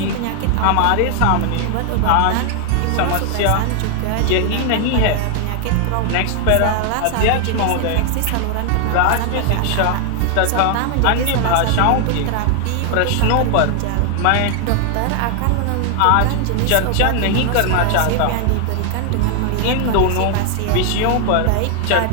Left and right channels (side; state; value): both; different; correlation 0.00